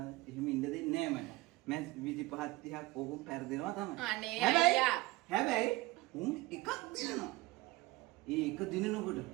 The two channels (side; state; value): left; quieter; 20.5 dB